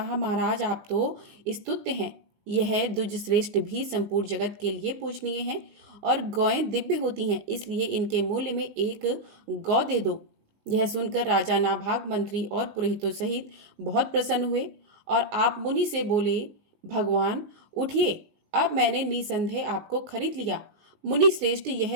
महाराज आप तो स्तुत्य हैं। यह द्विज श्रेष्ठ भी संपूर्ण जगत के लिए पूजनीय है और गौएं दिव्य होती हैं, इसलिए इनके मूल्य में 1 गौ दे दो। यह सुनकर राजा नाभाग मंत्री और पुरोहितों सहित बहुत प्रसन्न हुए और आप मुनि से बोले, भगवान उठिए, अब मैंने निसंदेह आपको खरीद लिया। मुनि श्रेष्ठ,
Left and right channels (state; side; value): late; left; 19 ms